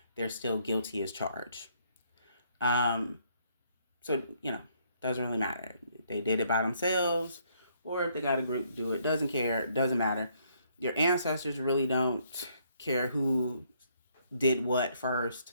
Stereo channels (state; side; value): inverted; both; correlation -0.69